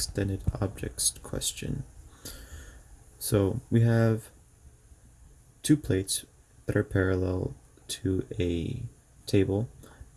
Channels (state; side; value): identical; both; correlation 1.00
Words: objects question. So we have two plates that are parallel to a table.